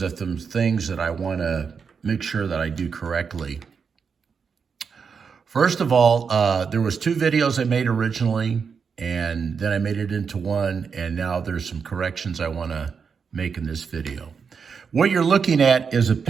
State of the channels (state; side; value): quieter; left; 6.0 dB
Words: of some things that I want to make sure that I do correctly. First of all, there was two videos I made originally, and then I made it into one, and now there's some corrections I want to make in this video. What you're looking at is a